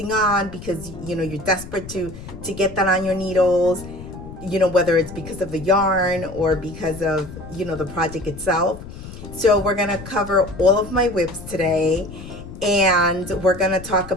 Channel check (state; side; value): noise; left; rumble, 13 dB below the sound